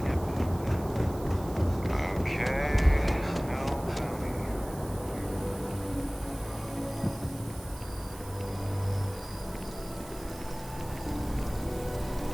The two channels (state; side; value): noise; right; hiss, 18 dB below the sound